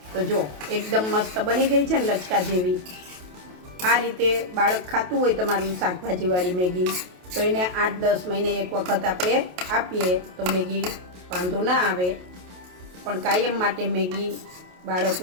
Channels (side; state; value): left; late; 28 ms